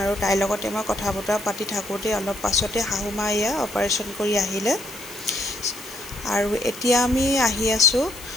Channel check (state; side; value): noise; left; hiss, 15 dB below the sound